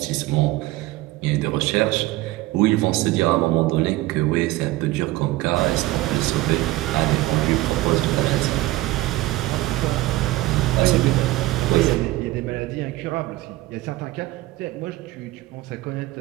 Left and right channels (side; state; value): left; quieter; 18.0 dB